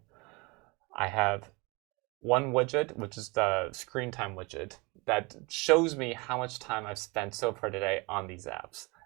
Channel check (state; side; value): quieter; left; 27.3 dB